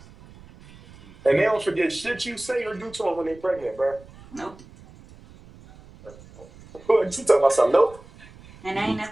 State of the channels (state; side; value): noise; right; rumble, 22 dB below the sound